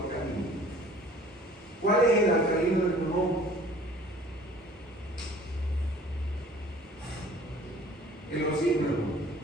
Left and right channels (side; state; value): both; normal; correlation 0.50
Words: ¿Cuál es el alcalino del pulmón? El oxígeno.